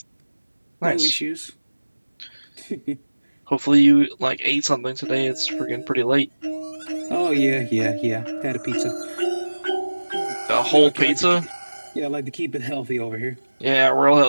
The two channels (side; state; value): both; inverted; correlation -1.00